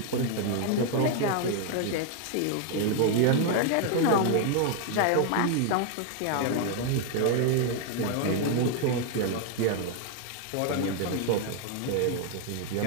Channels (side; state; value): both; different; correlation 0.00